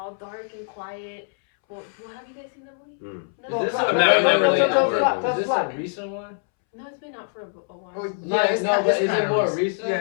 dark and quiet. Well, have you guys seen the movie? Mm. Is this I'm not related tell to- us Is this a recent one? No, it's been out for a while. Oh, yeah, it's No, kind but of is it more recent?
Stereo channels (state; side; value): silent; right; 63 dB below the other